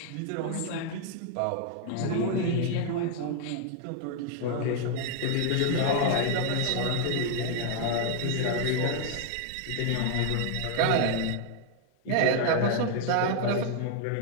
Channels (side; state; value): both; different; correlation 0.00